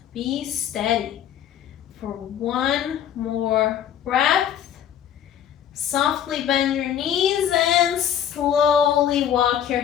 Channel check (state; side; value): quieter; right; 9.7 dB